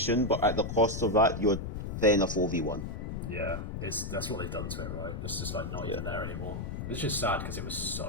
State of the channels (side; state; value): left; noise; rumble, 5 dB below the sound